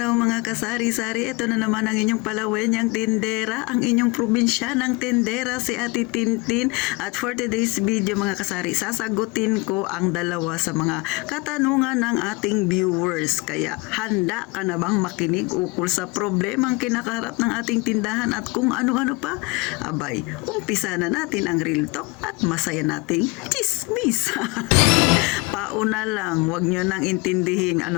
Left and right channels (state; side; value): quieter; right; 25.6 dB